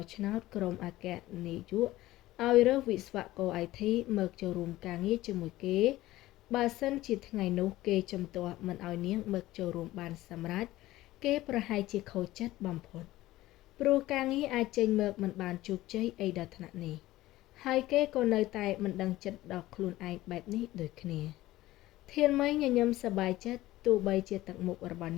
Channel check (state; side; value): quieter; right; 16.6 dB